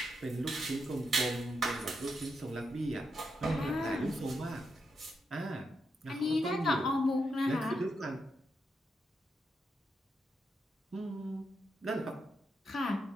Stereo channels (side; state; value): both; normal; correlation 0.83